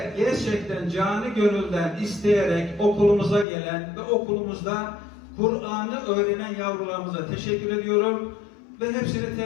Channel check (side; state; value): right; drops out; at 3.5 s